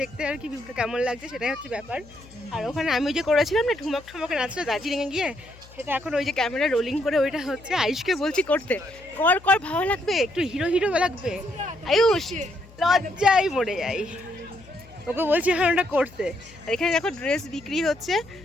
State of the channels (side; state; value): left; noise; hum, 22 dB below the sound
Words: দেখতে আর কি ভিউটা কেমন লাগছে সেটাই হচ্ছে ব্যাপার। আর ওখানে আমি যে করেছিলাম না ঠুমক ঠুমকে নাচটা দার্জিলিংয়ে গিয়ে, সেটা এখন ওই যে ক্যামেরা রোলিং করে ওইটা হচ্ছে আয়ুষকে বলছি করতে, কর কর ভালো লাগবে, একটু হিরো হিরো লাগবে। আয়ুষ লজ্জায় মরে যাই, ওকে বলছি এখন ওটা করতে। আর এখানে দেখো ড্রেস বিক্রি হচ্ছে,